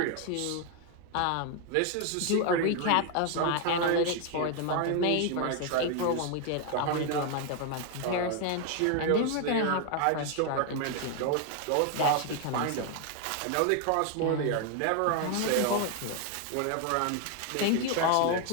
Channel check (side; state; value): both; different; correlation 0.01